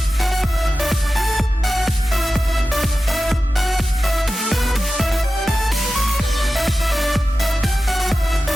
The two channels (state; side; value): normal; both; correlation 0.93